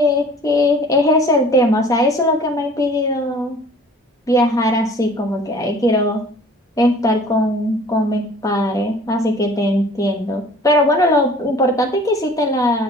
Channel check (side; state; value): both; normal; correlation 0.49